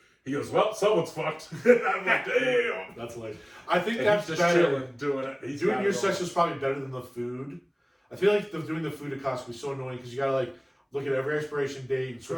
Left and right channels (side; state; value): both; identical; correlation 1.00